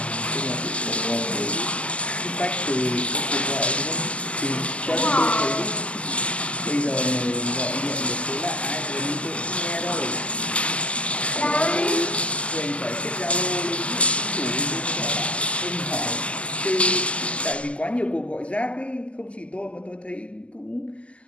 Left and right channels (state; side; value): late; right; 0.059 ms